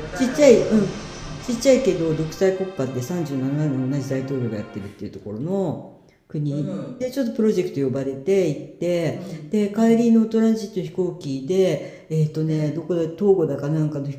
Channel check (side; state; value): both; identical; correlation 1.00